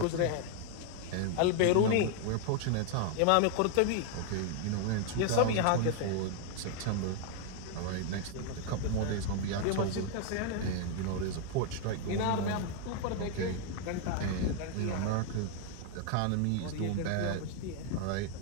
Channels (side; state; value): both; different; correlation 0.00